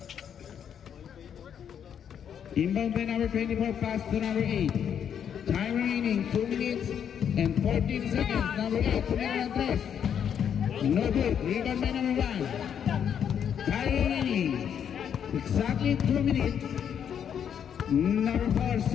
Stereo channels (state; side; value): quieter; right; 8.4 dB